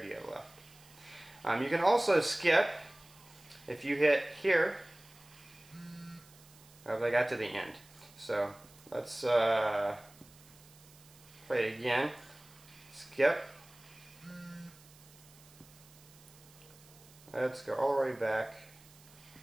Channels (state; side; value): noise; right; hiss, 24 dB below the sound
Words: do you have left. You can also skip. If you hit here, I got to the end. So let's play it again. Skip. Let's go all the way back.